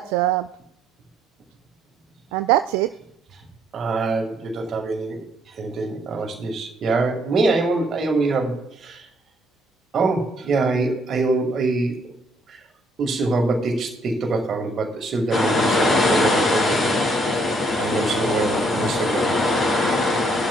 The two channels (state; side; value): normal; both; correlation 0.68